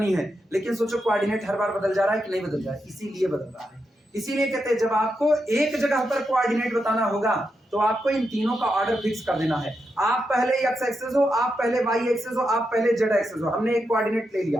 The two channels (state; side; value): normal; both; correlation 0.85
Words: है, लेकिन सोचो कोऑर्डिनेट हर बार बदल जा रहा है कि नहीं बदल जा रहा है? इसीलिए बदल रहा है। इसीलिए कहते हैं जब आपको एक जगह पर कोऑर्डिनेट बताना होगा तो आपको इन तीनों का ऑर्डर फिक्स कर देना है। आप पहले एक्स एक्सेस हो, आप पहले वाई एक्सेस हो, आप पहले जेड एक्सेस हो। हमने एक कोऑर्डिनेट ले